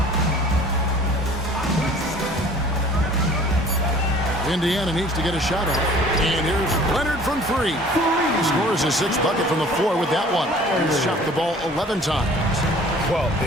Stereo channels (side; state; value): both; normal; correlation 0.49